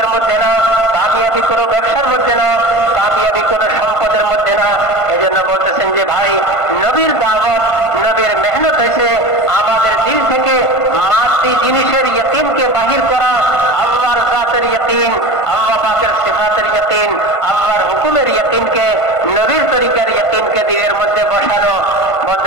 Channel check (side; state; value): right; late; 1.5 ms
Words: মধ্যে না, কামিয়াবি কোনো ব্যবসার মধ্যে না, কামিয়াবি কোনো সম্পদের মধ্যে না। এজন্য বলতেছেন যে ভাই, নবীর দাওয়াত, নবীর মেহনত হয়েছে আমাদের দিল থেকে মাটি জিনিসের ইয়াকিনকে বাহির করা, আল্লাহর জাতের ইয়াকিন, আল্লাহ পাকের সিফাতের ইয়াকিন, আল্লাহর হুকুমের ইয়াকিনকে, নবীর তরিকার ইয়াকিনকে দিলের মধ্যে বসানো।